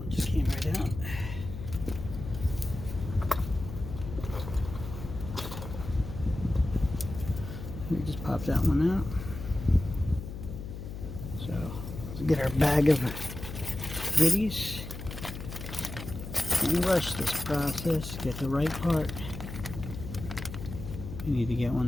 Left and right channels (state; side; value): noise; left; hum, 9 dB below the sound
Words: just came right out. We just pop that one out. So let's get our bag of goodies and rush this process. Get the right part. We need to get one